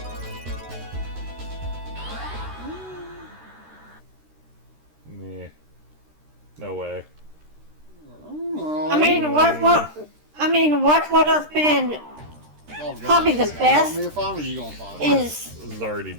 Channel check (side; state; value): left; late; 13 ms